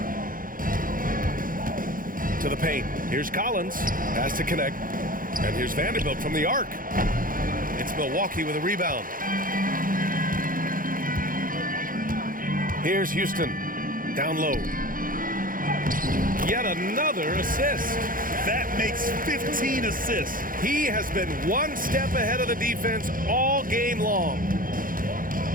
To the paint. Here's Collins. Pass to connect. And here's Vanderbilt from the arc. It's Milwaukee with a rebound. Here's Houston. Down low. Yet another assist. That makes 15 assists. He has been 1 step ahead of the defense all game long.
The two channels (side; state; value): left; late; 0.40 ms